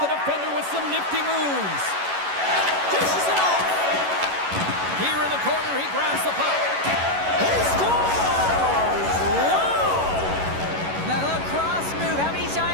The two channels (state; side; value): late; left; 11 ms